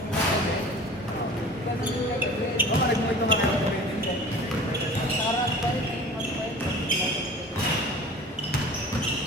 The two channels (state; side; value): normal; both; correlation 0.42